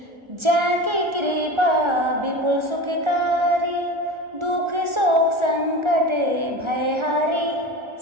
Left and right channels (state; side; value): late; left; 1.4 ms